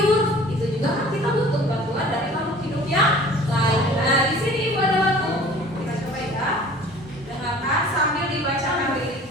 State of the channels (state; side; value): normal; both; correlation 0.47